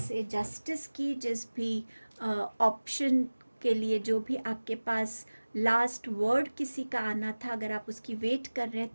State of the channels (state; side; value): inverted; both; correlation -1.00